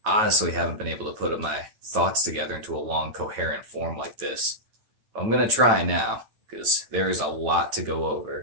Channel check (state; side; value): late; left; 9.1 ms